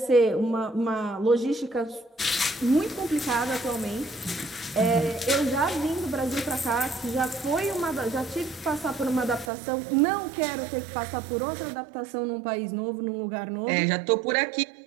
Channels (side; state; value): left; drops out; at 9.5 s